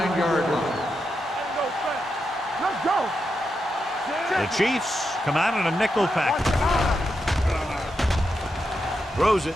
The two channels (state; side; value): normal; both; correlation 0.86